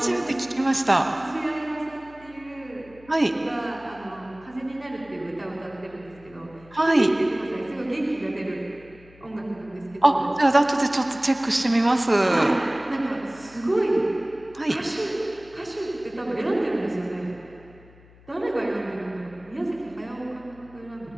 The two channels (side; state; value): left; noise; hum, 24 dB below the sound